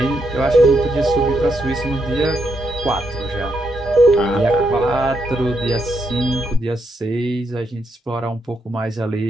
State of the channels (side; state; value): both; normal; correlation 0.79